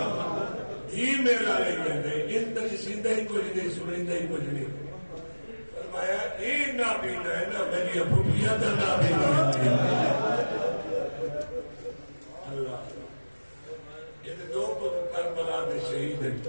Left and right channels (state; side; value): inverted; both; correlation -1.00